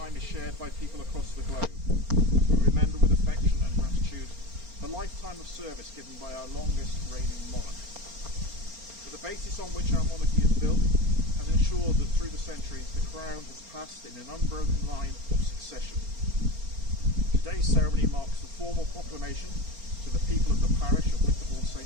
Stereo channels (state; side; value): late; left; 4.3 ms